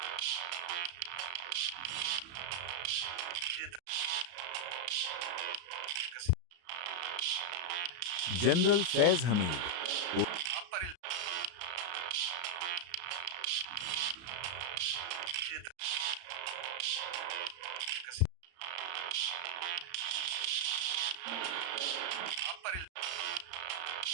जनरल फैज़ हमीद।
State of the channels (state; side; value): late; left; 34 ms